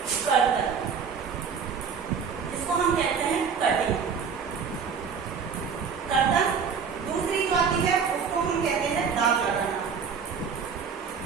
कर्तन, इसको हम कहते हैं कटिंग कर्तन। दूसरी जो आती है उसको हम कहते हैं दाग लगाना।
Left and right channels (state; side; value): quieter; left; 6.3 dB